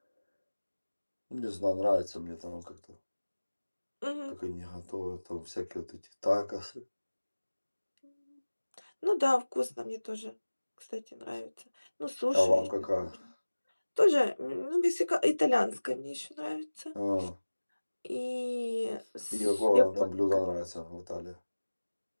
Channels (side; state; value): both; inverted; correlation -1.00